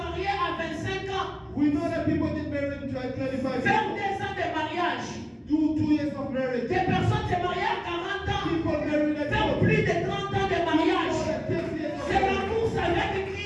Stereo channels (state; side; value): identical; both; correlation 1.00